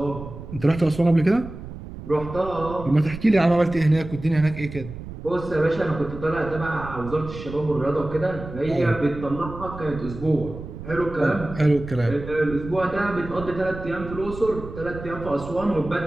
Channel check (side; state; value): right; noise; rumble, 12 dB below the sound